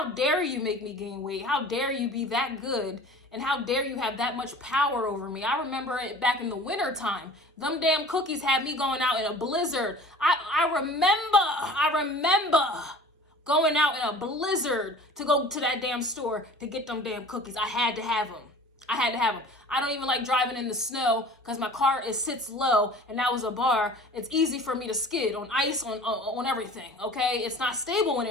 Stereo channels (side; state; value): both; normal; correlation 0.44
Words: dare you make me gain weight? How dare you be that good? And how dare you have that much power over me? I remember it back in the winter time. Them damn cookies had me going out in a blizzard. I remember going out in a blizzard to go to that damn store to get them damn cookies. I had to have them. I don't even like driving in the snow because my car sits low, and that was a bar. It's easy for me to skid on ice, on everything, okay? It's not stable